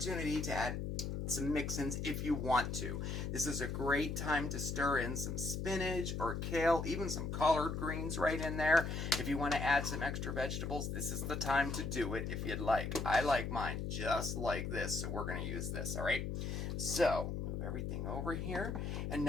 to add some mix-ins if you want to. This is a great time to stir in some spinach or kale, even some collard greens right in there. If you want to add some extra vegetables, this is the time to do it if you'd like. I like mine just like this, so we're going to use this, all right? So, move everything over here. And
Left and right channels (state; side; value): noise; left; hum, 3 dB below the sound